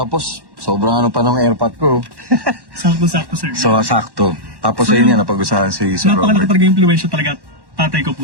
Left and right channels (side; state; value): left; late; 1.1 ms